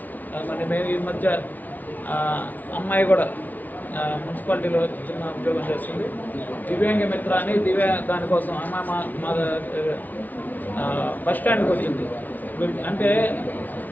మరి మేము ఈ మధ్య అమ్మాయి కూడా మున్సిపాలిటీలో చిన్న ఉద్యోగం చేస్తుంది. దివ్యాంగ మిత్ర అని దానికోసం అమ్మాయి మా బస్ స్టాండ్కి వచ్చింది. అంటే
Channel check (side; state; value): right; late; 0.081 ms